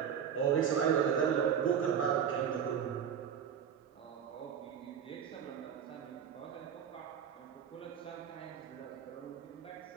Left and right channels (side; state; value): left; quieter; 8.1 dB